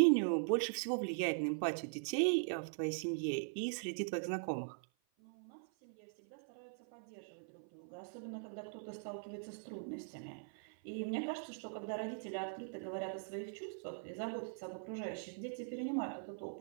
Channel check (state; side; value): silent; left; 50 dB below the other